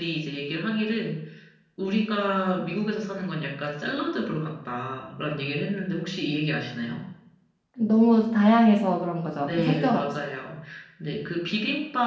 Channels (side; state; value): both; identical; correlation 1.00